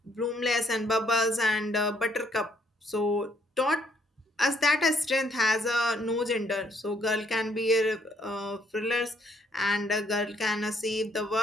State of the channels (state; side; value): normal; both; correlation 0.68